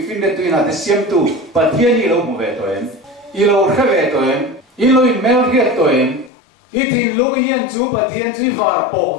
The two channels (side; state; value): right; drops out; at 6.3 s